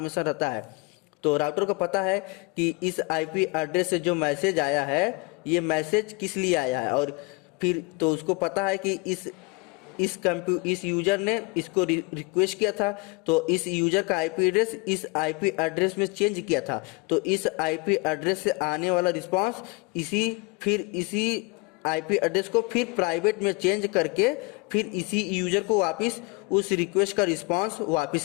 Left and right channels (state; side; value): quieter; right; 28.1 dB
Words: रहता है। तो राउटर को पता है कि इस आईपी एड्रेस से जो मैसेज आया है ये मैसेज किस लिए आया है, और फिर तो उसको पता है कि इस यूजर ने इसको रिक्वेस्ट किया था, तो इस यूजर का आईपी एड्रेस इस आईपी एड्रेस में चेंज किया था। तो इस आईपी एड्रेस से आने वाला रिस्पांस इसी आईपी एड्रेस को फिर प्राइवेट में चेंज करके फिर इसी यूजर को वापस उस रिक्वेस्ट का रिस्पांस